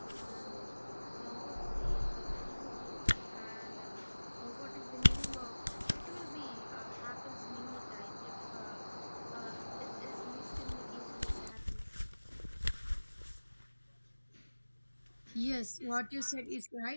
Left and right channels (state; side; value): inverted; both; correlation -1.00